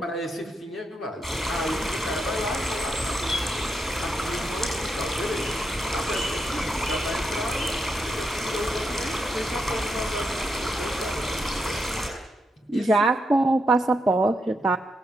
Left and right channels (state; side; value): normal; both; correlation 0.82